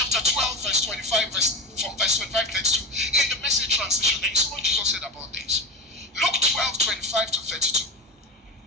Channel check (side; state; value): both; normal; correlation 0.26